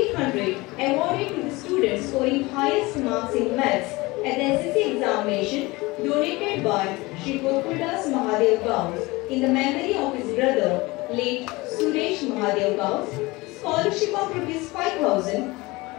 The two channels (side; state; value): right; quieter; 22.3 dB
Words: awarded to the student scoring highest marks in maths at the SSC examination donated by Shri Gokuldas Mahadev Gauss in the memory of his brother, late Suresh Mahadev Gauss. Scholarship of rupees 5,000